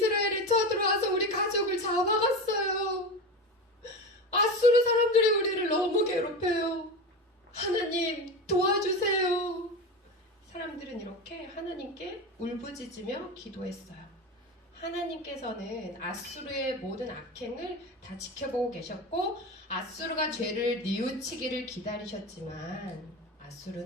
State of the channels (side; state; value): both; normal; correlation 0.24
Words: 쳐들어와서 우리 가족을 잡아갔어요. 아수르 사람들이 우리를 너무 괴롭혀요. 하나님 도와주세요. 사람들은 이렇게 하나님께 울부짖으며 기도했어요. 하나님께서는 아수르의 모든 악행을 다 지켜보고 계셨고 아수르가 죄를 뉘우치기를 기다리셨지만